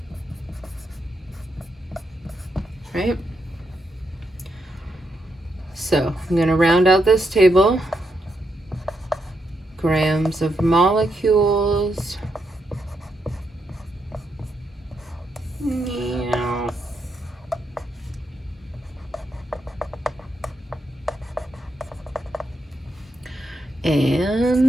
Right? So I'm going to round out this table. Grams of molecules. Meow.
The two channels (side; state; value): both; normal; correlation 0.81